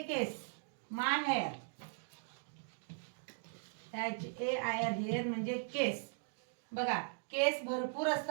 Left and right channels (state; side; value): silent; left; digital silence